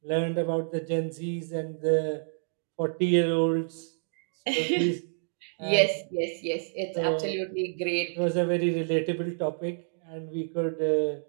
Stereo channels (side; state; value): left; silent; digital silence